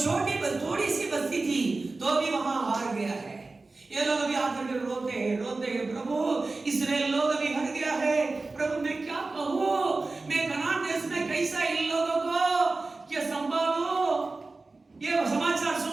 थोड़ी सी बस्ती थी, तो भी वहां हार गया है। ये लोग अभी आकर के रोते हैं प्रभु इस्राएल लोग अभी हट गया है, प्रभु मैं क्या कहूँ, मैं कनान देश में कैसा इन लोगों को क्या संभालूं? ये समाचार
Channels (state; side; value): quieter; left; 3.5 dB